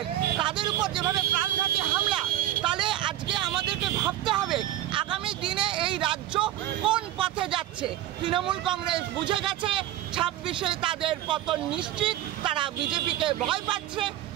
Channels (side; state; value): left; quieter; 13.4 dB